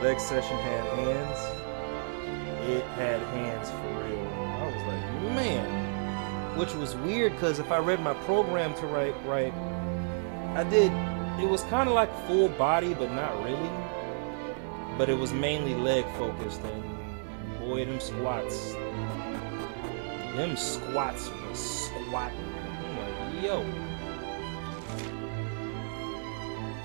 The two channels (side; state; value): left; silent; 57 dB below the other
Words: session had hands. It had hands for real. I was like, man. Which was weird because if I read my program to right, I did. It was kind of like full body, but not really. But it was mainly leg focused, and boy, them squats was squatting. I'm like, yo.